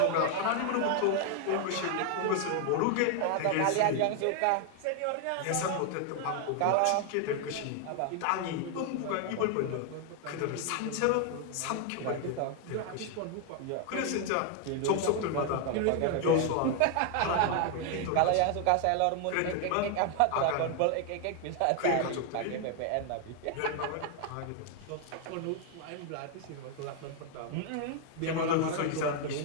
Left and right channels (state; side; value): different; both; correlation 0.00